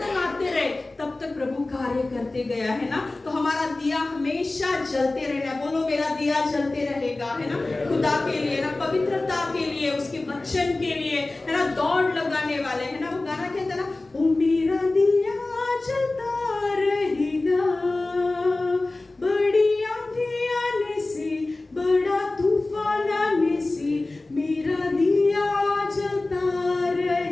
आते रहे तब तक प्रभु कार्य करते गया, है ना। तो हमारा दिया हमेशा जलते रहना। बोलो, मेरा दिया जलते रहेगा, है ना। खुदा के लिए ना, पवित्रता के लिए, उसके वचन के लिए, है ना, दौड़ लगाने वाले, है ना। वो गाना कहता है ना, ओ मेरा दिया जलता रहेगा, बड़ी आंधी आने से, बड़ा तूफान आने से, मेरा दिया जलता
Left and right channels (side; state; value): right; quieter; 3.0 dB